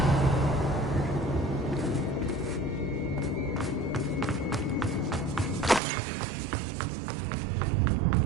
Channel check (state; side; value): drops out; left; at 5.8 s